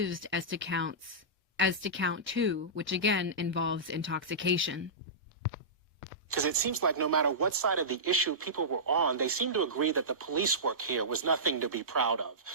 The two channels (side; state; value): both; normal; correlation -0.18